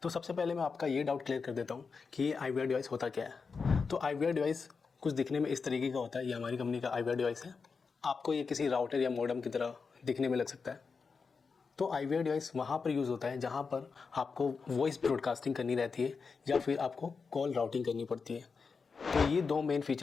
तो सबसे पहले मैं आपका ये डाउट क्लियर कर देता हूँ कि ये आईवीआर डिवाइस होता क्या है। तो आईवीआर डिवाइस कुछ दिखने में इस तरीके का होता है। ये हमारी कंपनी का आईवीआर डिवाइस है। आपको ये किसी राउटर या मॉडेम की तरह दिखने में लग सकता है। तो आईवीआर डिवाइस वहाँ पर यूज़ होता है जहाँ पर आपको वॉइस ब्रॉडकास्टिंग करनी रहती है या फिर आपको कॉल राउटिंग करनी पड़ती है। तो ये दो मेन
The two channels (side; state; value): right; quieter; 5.1 dB